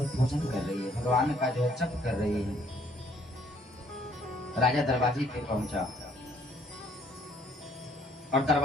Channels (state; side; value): normal; both; correlation 0.62